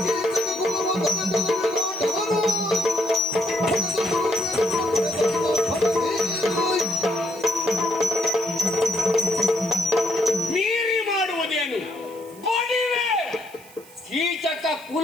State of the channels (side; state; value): right; noise; hiss, 22 dB below the sound